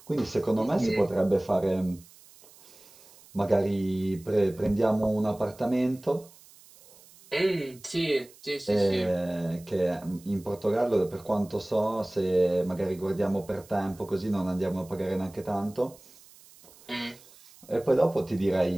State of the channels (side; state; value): right; noise; hiss, 24 dB below the sound